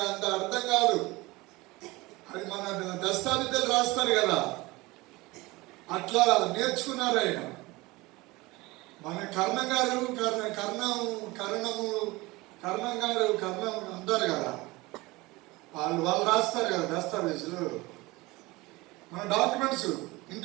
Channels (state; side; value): quieter; left; 21.7 dB